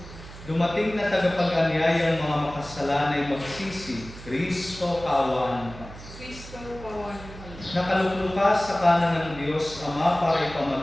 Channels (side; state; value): right; noise; hum, 15 dB below the sound